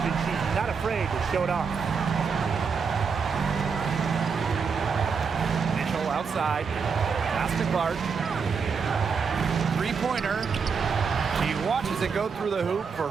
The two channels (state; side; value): quieter; left; 5.7 dB